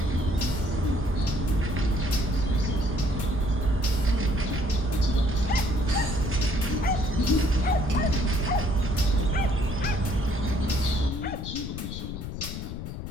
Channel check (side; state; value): left; noise; rumble, 7 dB below the sound